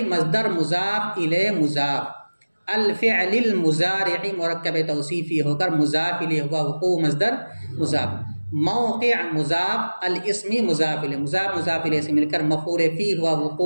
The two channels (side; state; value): both; inverted; correlation -1.00